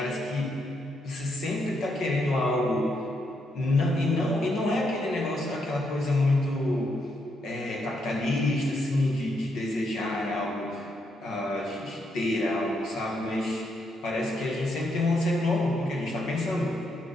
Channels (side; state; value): both; normal; correlation 0.78